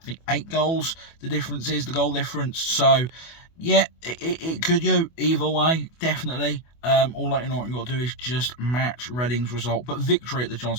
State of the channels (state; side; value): late; right; 24 ms